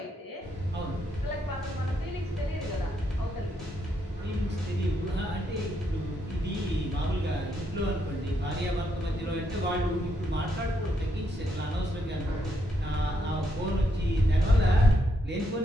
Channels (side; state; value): both; normal; correlation 0.78